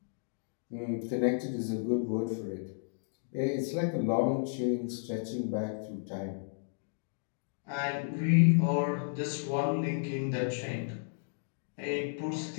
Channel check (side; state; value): right; silent; digital silence